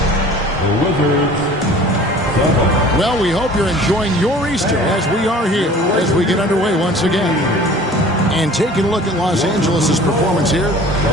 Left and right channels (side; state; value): both; normal; correlation 0.46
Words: Well, we hope you're enjoying your Easter as we are here as we get underway once again. And taking a look at Los Angeles' performance here,